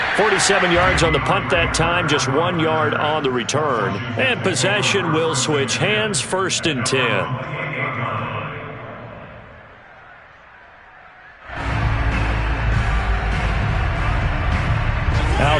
47 yards on the punt that time, just 1 yard on the return. And possession will switch hands, 1st and 10.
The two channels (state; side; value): identical; both; correlation 1.00